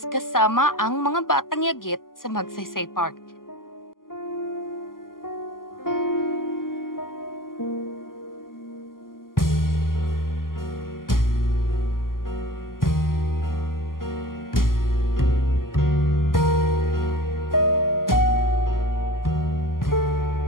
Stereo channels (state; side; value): late; right; 0.91 ms